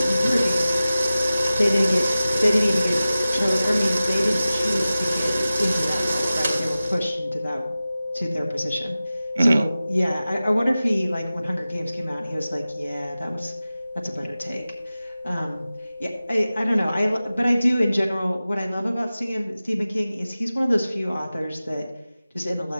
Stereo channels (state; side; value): inverted; both; correlation -0.96